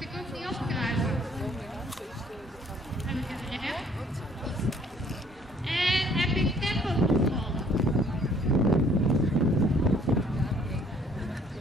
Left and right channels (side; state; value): both; normal; correlation 0.60